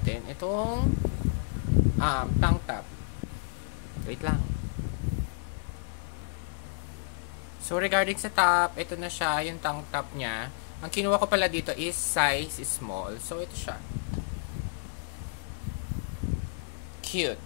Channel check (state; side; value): silent; right; digital silence